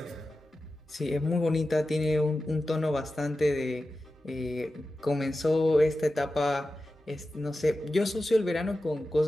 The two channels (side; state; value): both; normal; correlation 0.93